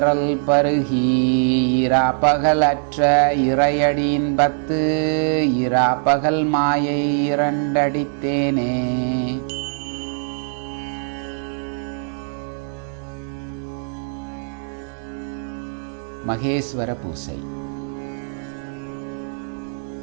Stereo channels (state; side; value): silent; left; digital silence